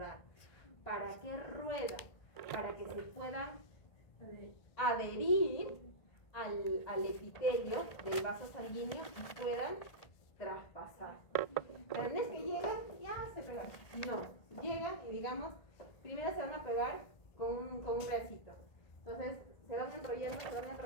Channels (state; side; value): late; right; 1.5 ms